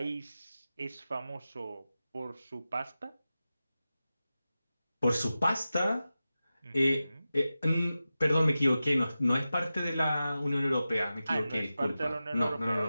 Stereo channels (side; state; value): both; inverted; correlation -0.94